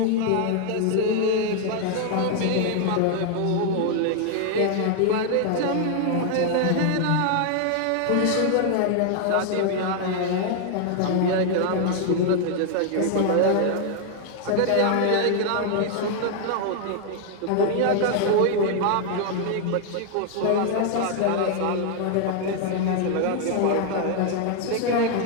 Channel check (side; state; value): both; different; correlation 0.00